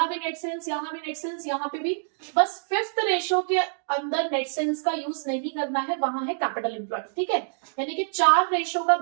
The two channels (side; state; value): left; silent; digital silence